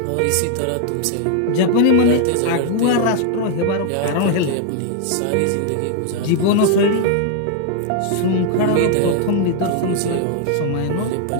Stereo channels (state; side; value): different; both; correlation 0.00